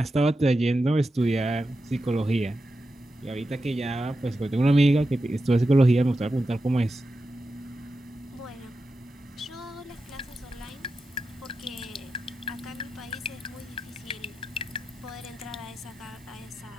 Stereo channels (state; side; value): normal; both; correlation 0.90